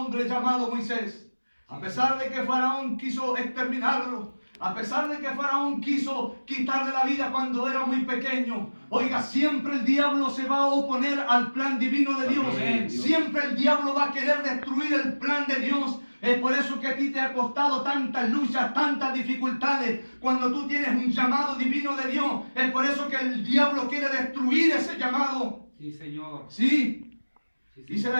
llamado Moisés. A pesar de que Faraón quiso exterminarlo, a pesar de que Faraón quiso quitarle la vida cuando era muy pequeño, oiga, siempre el diablo se va a oponer al plan divino de Dios. Amén. Siempre el diablo va a querer destruir el plan de Dios. Es por eso que a ti te ha costado tantas luchas, tantas dificultades, cuando tú tienes un llamado divino de Dios. Es por eso que el diablo quiere destruir ese llamado. Sí, Señor. Sí, Sí, dice Señor.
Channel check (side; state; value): both; inverted; correlation -1.00